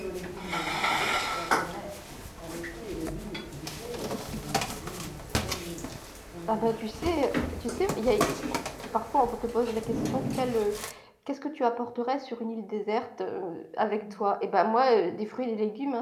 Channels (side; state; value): both; identical; correlation 1.00